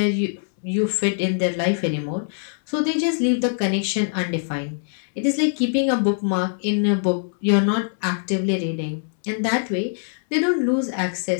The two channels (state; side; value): silent; right; 64 dB below the other